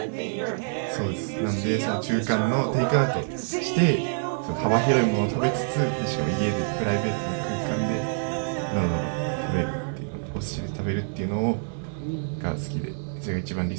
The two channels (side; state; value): left; silent; 58 dB below the other